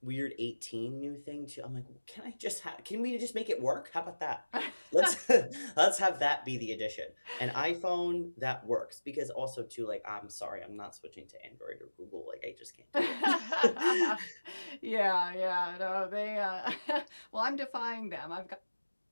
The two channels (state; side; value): inverted; both; correlation -1.00